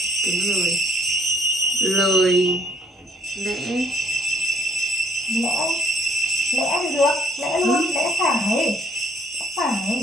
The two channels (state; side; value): normal; both; correlation 0.64